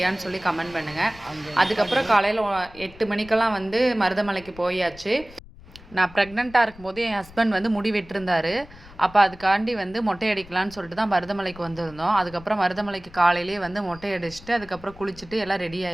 சொல்லி கமெண்ட் பண்ணுங்கள். அதுக்கப்புறம் காலையில் 8 மணிக்கெல்லாம் வந்து மருதமலைக்கு போயாச்சு. நான் ப்ரெக்னெண்ட்டாக இருக்கும்போது என் ஹஸ்பண்ட் வந்து முடி வெட்டிருந்தார். அப்போ அதுக்காண்டி வந்து மொட்டை அடிக்கலான்னு சொல்லிட்டு தான் மருதமலைக்கு வந்திருந்தோம். அதுக்கப்புறம் மருதமலைக்கு காலையிலேயே வந்து மொட்டை அடிச்சுட்டு அதுக்கப்புறம் குளிச்சுட்டு எல்லாம் ரெடி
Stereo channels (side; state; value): left; noise; rumble, 20 dB below the sound